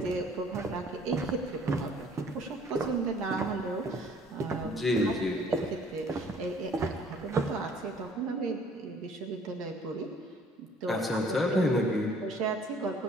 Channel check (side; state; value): both; normal; correlation 0.57